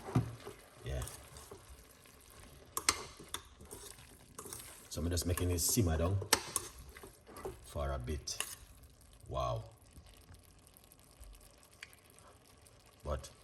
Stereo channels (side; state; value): both; identical; correlation 1.00